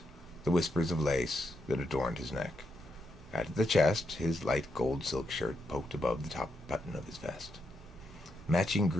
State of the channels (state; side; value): normal; both; correlation 0.82